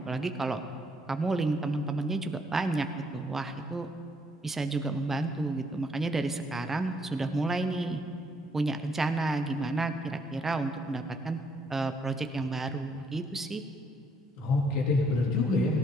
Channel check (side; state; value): both; normal; correlation 0.70